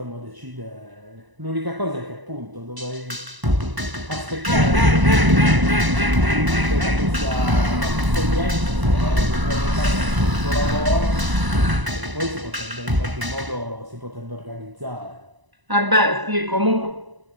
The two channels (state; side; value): late; left; 1.0 ms